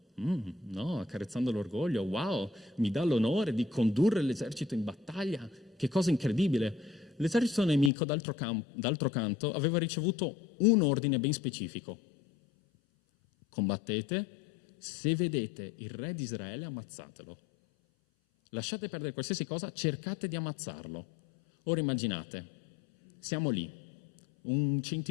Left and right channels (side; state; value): right; drops out; at 7.9 s